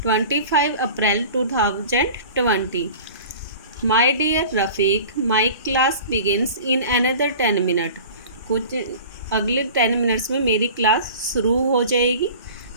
25 April 2020. My dear Rafiq, my class begins in another 10 minute. कुछ अगले 10 मिनट्स में मेरी क्लास शुरू हो जाएगी.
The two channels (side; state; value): both; inverted; correlation -0.40